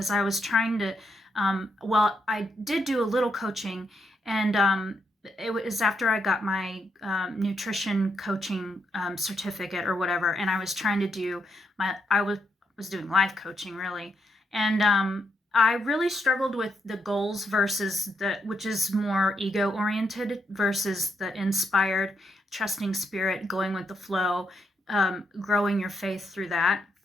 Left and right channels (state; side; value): normal; both; correlation 0.79